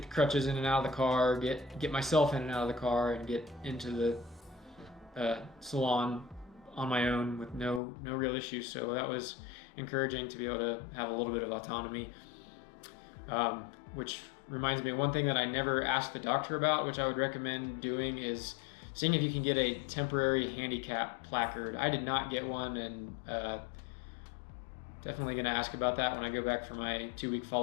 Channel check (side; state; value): right; drops out; at 7.8 s